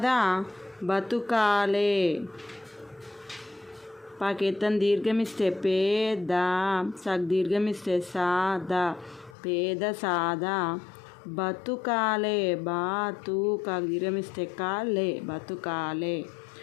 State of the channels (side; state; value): right; drops out; at 9.3 s